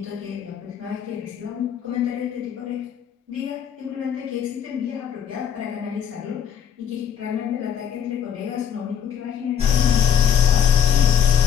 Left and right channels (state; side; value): quieter; right; 8.4 dB